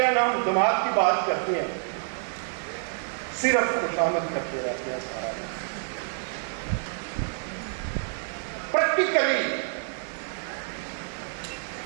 ہیں، نہ ہم دماغ کی بات کرتے ہیں، صرف خوشامد کرتے رہتے ہیں سارا دن. پریکٹیکلی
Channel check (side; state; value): left; silent; 60 dB below the other